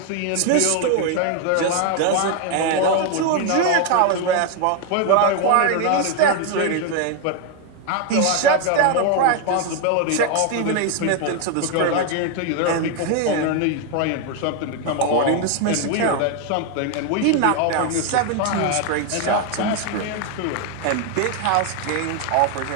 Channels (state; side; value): different; both; correlation 0.01